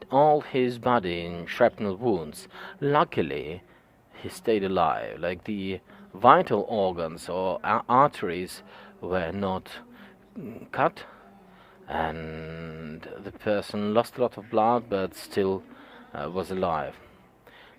all his body in shrapnel wounds. Luckily, he stayed alive. Like the vital organs or arteries were not cut, and the person lost a lot of blood but still was alive.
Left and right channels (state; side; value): identical; both; correlation 1.00